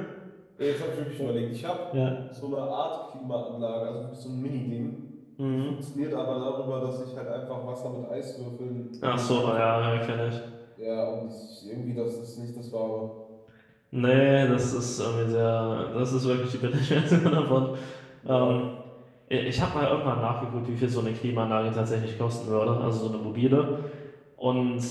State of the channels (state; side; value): identical; both; correlation 1.00